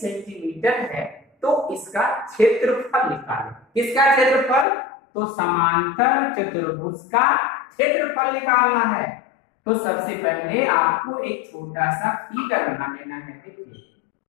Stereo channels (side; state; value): right; drops out; at 4.7 s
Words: है, तो इसका क्षेत्रफल निकालें। किसका क्षेत्रफल, तो समांतर चतुर्भुज का क्षेत्रफल निकालना है। तो सबसे पहले आपको एक छोटा सा फिगर बना लेना है। देखिए